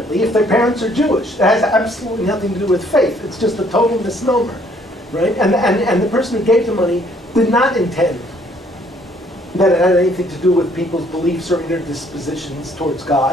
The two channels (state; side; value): normal; both; correlation 0.63